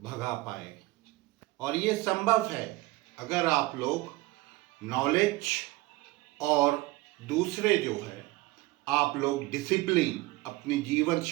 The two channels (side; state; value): left; quieter; 20.1 dB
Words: पाए। और ये संभव है अगर आप लोग नॉलेज और दूसरे जो है आप लोग डिसिप्लिन अपनी जीवन